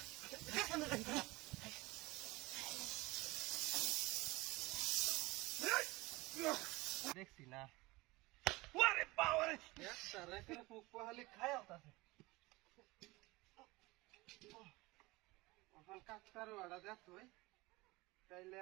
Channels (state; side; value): quieter; left; 21.9 dB